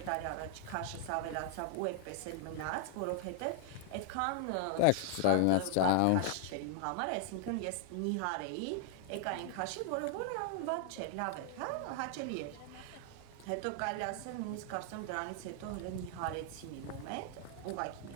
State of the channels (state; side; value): different; both; correlation -0.01